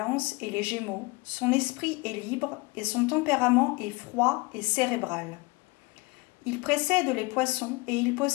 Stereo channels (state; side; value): quieter; right; 25.8 dB